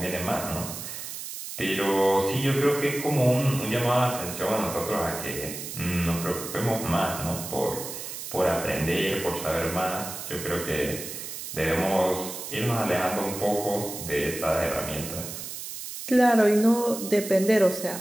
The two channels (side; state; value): right; noise; hiss, 8 dB below the sound